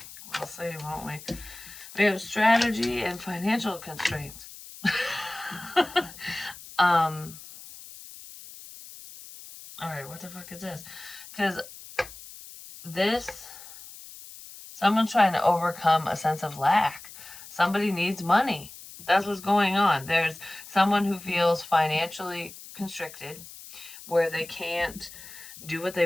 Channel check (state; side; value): noise; left; hiss, 16 dB below the sound